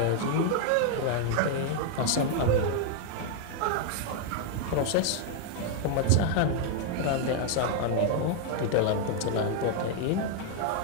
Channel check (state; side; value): different; both; correlation 0.00